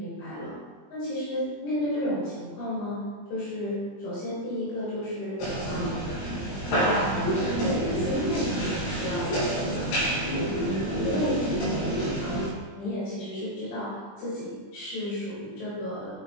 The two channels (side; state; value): right; late; 20 ms